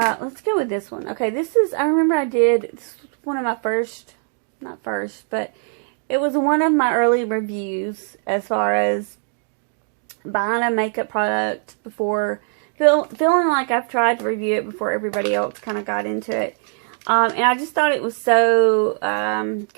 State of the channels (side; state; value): left; silent; 61 dB below the other